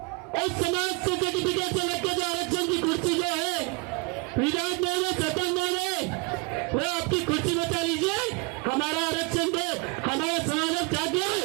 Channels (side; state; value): left; quieter; 29.9 dB